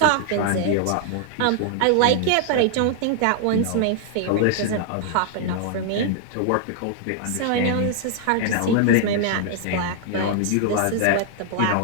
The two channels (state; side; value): different; both; correlation 0.00